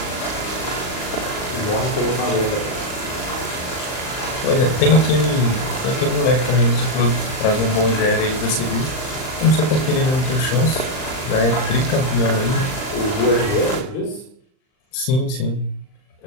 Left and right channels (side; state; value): right; late; 39 ms